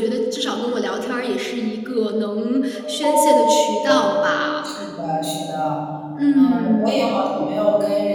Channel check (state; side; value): identical; both; correlation 1.00